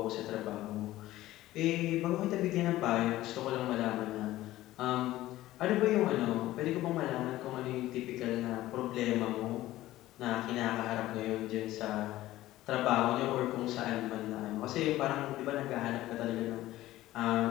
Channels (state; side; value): quieter; right; 15.8 dB